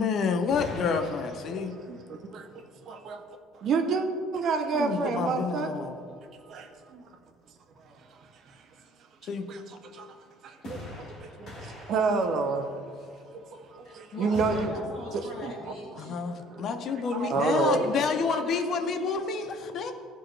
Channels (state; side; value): normal; both; correlation 0.54